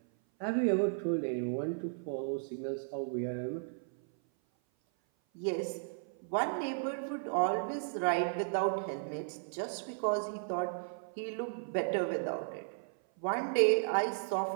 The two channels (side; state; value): left; silent; 55 dB below the other